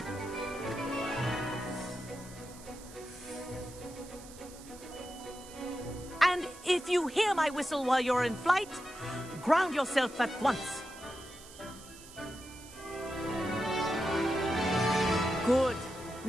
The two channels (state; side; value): noise; right; hiss, 18 dB below the sound